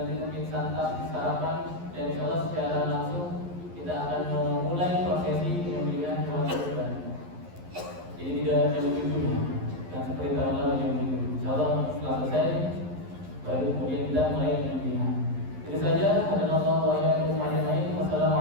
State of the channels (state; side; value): late; left; 11 ms